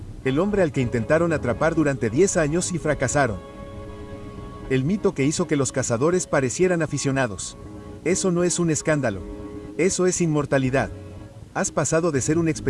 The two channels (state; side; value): identical; both; correlation 1.00